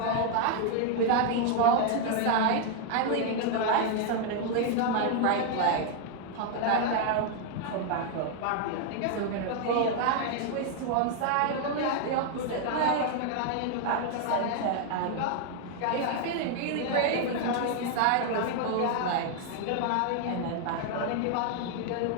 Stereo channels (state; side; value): different; both; correlation 0.00